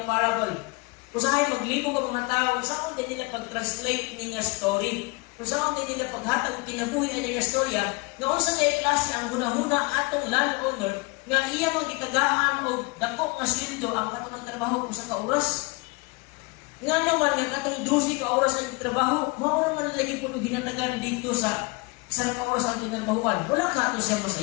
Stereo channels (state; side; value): quieter; right; 27.3 dB